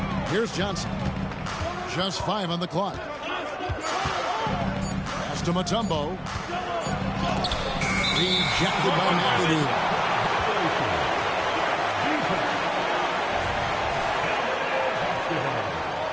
Here's Johnson. Just 5 on the clock. Pass to Mutombo. Rejected by McAdoo.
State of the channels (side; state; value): both; identical; correlation 1.00